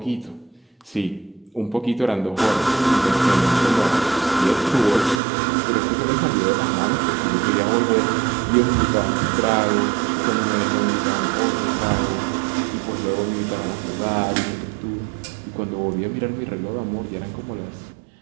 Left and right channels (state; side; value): drops out; left; at 5.2 s